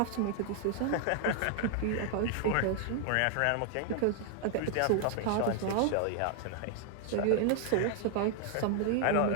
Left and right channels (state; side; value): different; both; correlation 0.00